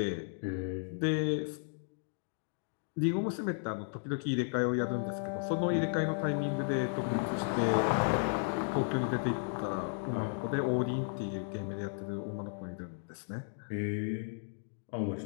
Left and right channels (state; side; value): silent; right; digital silence